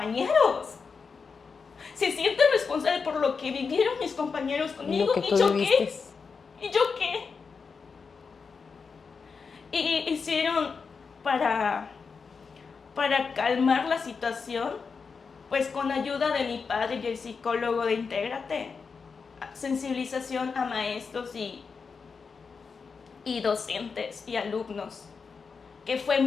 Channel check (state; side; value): quieter; right; 5.3 dB